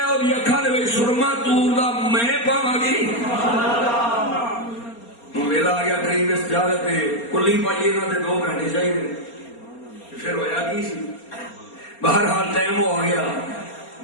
اور یہ اکھا لے سرما تور دا میں پاواں گی ویلا آ گیا قریب اس جاگت میں کلی پائیے نہ دے 2 گھنٹے چاہیے پھر ہویا کی سی بہرحال ٹائم ہو گیا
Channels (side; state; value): right; late; 4.3 ms